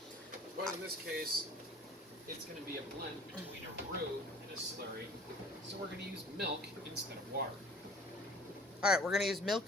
But in this case, it's going to be a blend between a roux and a slurry, so we're going to use milk instead of water. Alright, we're going to use milk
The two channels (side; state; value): both; normal; correlation 0.48